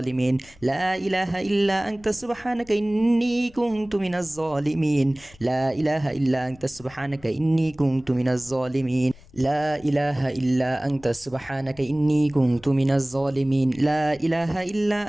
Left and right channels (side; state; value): left; noise; rumble, 25 dB below the sound